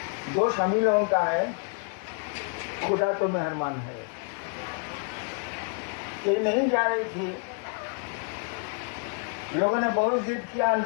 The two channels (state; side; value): quieter; right; 39.9 dB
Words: दोष हम ही लोगों का है, खुदा तो मेहरबान है। ये नहीं जा रही थी, लोगों ने बहुत जिद किया